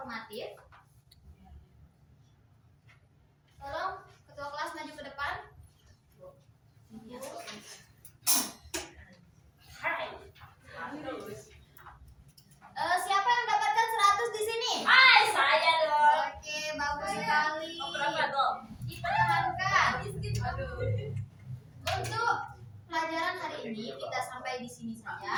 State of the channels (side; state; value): both; identical; correlation 1.00